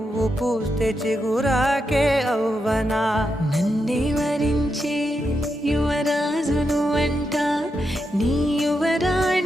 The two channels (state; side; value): normal; both; correlation 0.85